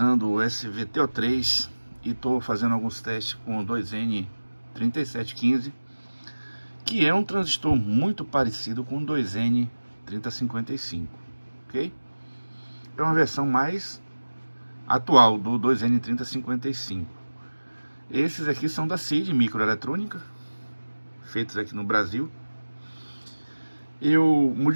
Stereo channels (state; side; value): inverted; both; correlation -1.00